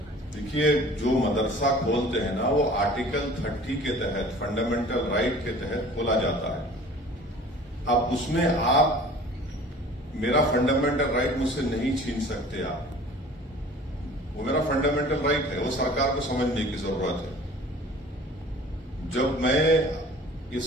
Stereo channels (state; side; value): normal; both; correlation 0.46